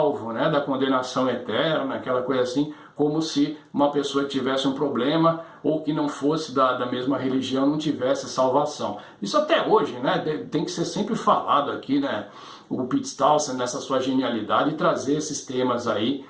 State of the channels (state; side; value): identical; both; correlation 1.00